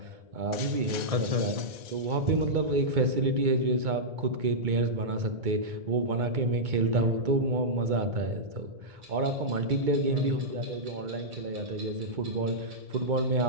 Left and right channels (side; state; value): left; late; 2.2 ms